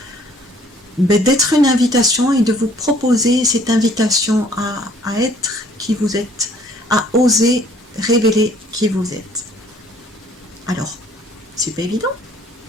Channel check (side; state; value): both; normal; correlation 0.58